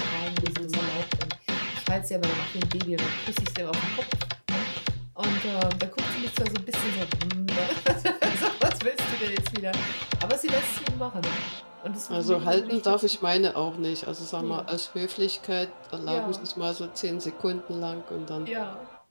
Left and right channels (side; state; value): both; inverted; correlation -1.00